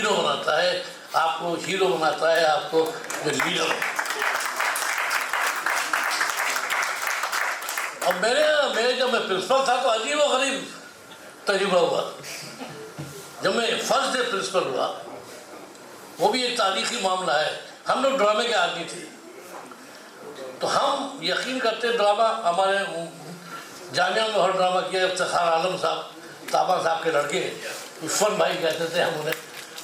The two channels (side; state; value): both; identical; correlation 1.00